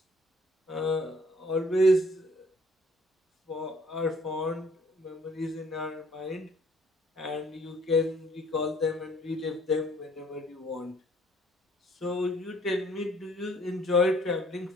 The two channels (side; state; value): both; normal; correlation 0.60